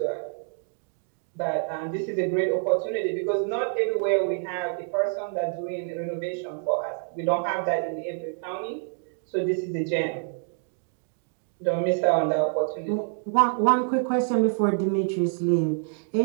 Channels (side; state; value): left; silent; 58 dB below the other